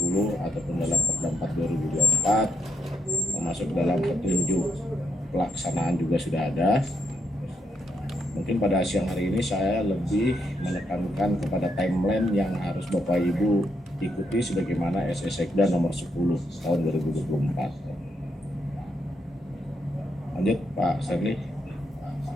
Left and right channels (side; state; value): both; normal; correlation 0.79